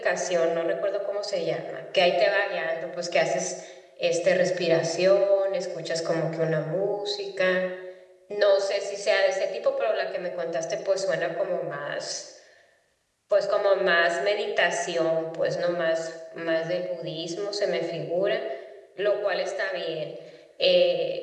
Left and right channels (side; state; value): both; identical; correlation 1.00